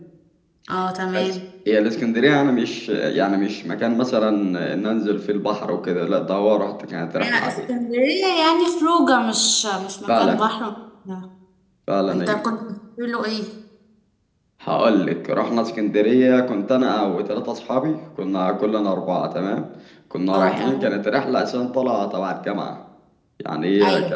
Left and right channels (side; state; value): both; identical; correlation 1.00